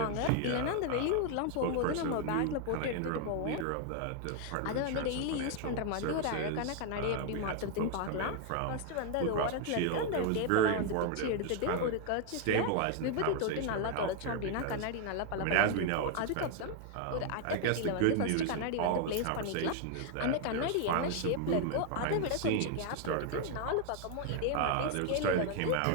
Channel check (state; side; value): different; both; correlation 0.00